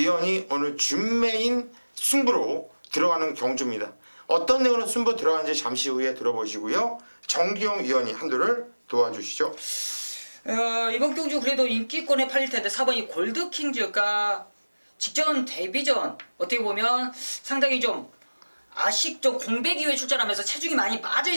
오늘 준메인 승부로 들어가는 경주입니다. 어떤 내용으로 승부 들어가는지 잠시 후에 들어보시고요. 정기용 의원이 한두를 도와주시죠. 이번 경주 그래도 인기권에 팔릴 텐데 4번이 골드킹즈가 직전 데뷔전 어떻게 보면 상당히 좀 좀 공백 이후에 출전하면서 체중이 많이 빠져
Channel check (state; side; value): inverted; both; correlation -1.00